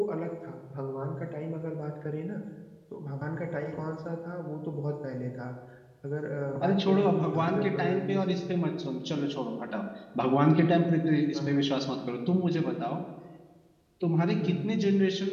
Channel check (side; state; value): both; identical; correlation 1.00